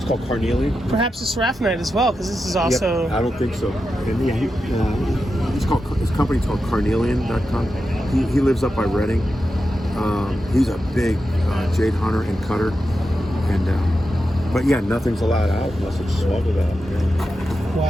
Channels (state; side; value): normal; both; correlation 0.89